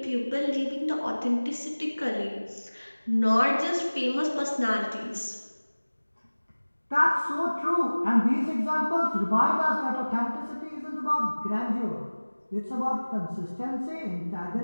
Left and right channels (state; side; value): inverted; both; correlation -1.00